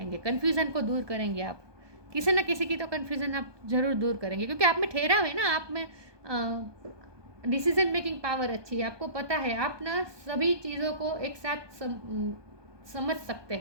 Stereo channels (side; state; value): left; late; 1.2 ms